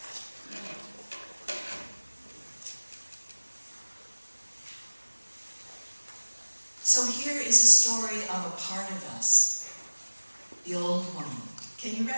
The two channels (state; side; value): inverted; both; correlation -1.00